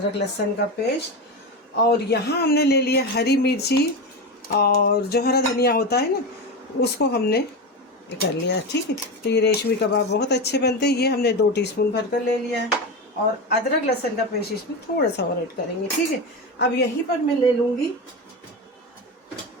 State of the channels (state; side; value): normal; both; correlation 0.19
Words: लहसुन का पेस्ट, और यहाँ हमने ले लिया हरी मिर्ची और जो हरा धनिया होता है ना उसको हमने कर लिया, ठीक है। तो ये रेशमी कबाब बहुत अच्छे बनते हैं। ये हमने 2 टीस्पून भर कर ले लिया है, और अदरक लहसुन का पेस्ट इसमें थोड़ा सा और ऐड करेंगे, ठीक है। अब यहीं पर मैं ले लूँगी,